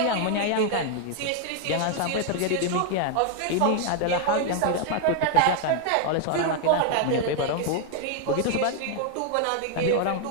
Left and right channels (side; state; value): both; different; correlation 0.00